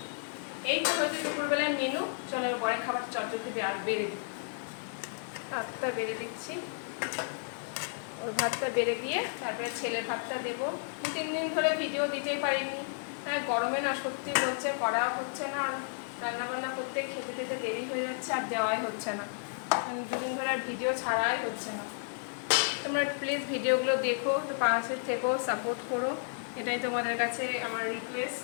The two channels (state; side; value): silent; right; 56 dB below the other